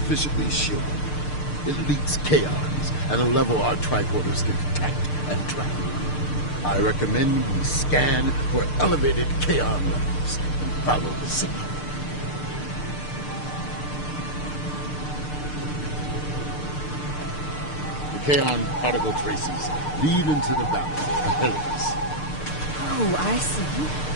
shielded. It leaks chaos at a level our tricorders can detect and track. I recommend we scan for elevated chaos levels and follow the signal. The Kaon particle traces lead into the valley ahead of us. Oh, I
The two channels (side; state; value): right; late; 6.7 ms